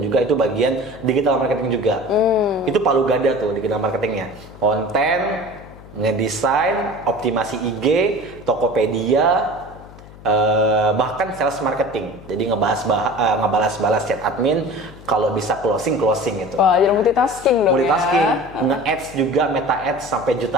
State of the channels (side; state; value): left; noise; hum, 19 dB below the sound